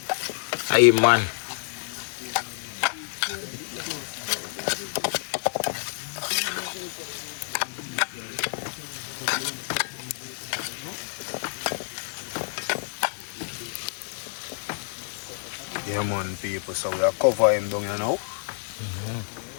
Hey man. Yeah man people, so we are cover him down here now.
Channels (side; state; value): right; silent; digital silence